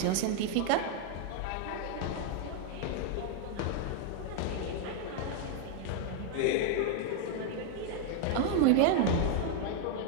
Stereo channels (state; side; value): different; both; correlation 0.00